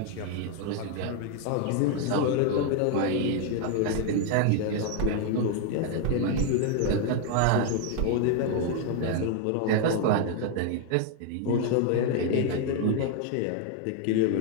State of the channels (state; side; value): different; both; correlation 0.00